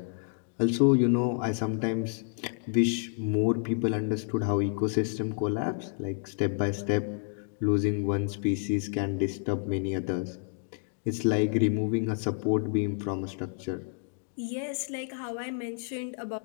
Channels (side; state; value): right; silent; digital silence